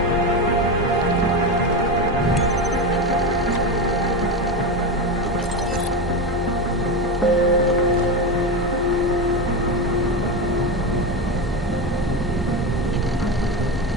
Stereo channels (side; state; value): both; normal; correlation 0.17